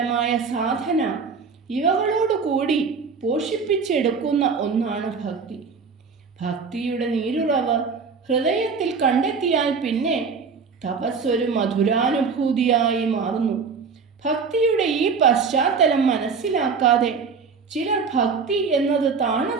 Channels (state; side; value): quieter; left; 5.3 dB